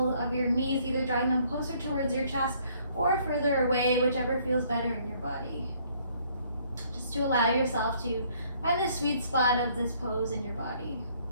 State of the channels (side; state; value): both; inverted; correlation -0.64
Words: of your knees, either drawing them closer towards your chest or further away, whichever feels better in your body. Just to allow yourself to find the sweet spot of this pose in your body.